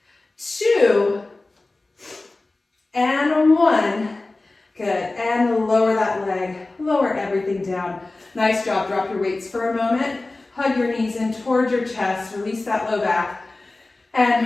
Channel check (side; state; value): right; quieter; 3.1 dB